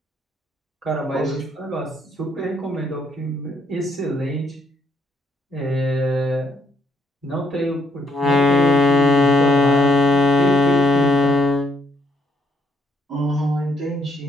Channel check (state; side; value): normal; both; correlation 0.72